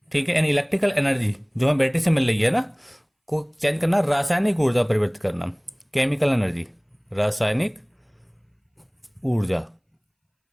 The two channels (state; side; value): identical; both; correlation 1.00